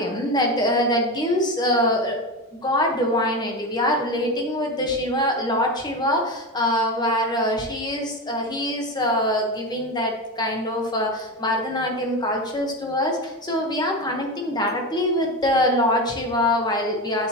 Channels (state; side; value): normal; both; correlation 0.20